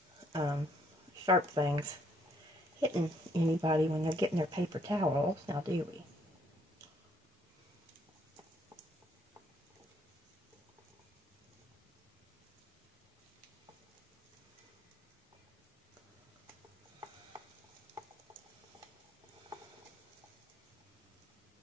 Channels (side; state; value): both; normal; correlation 0.68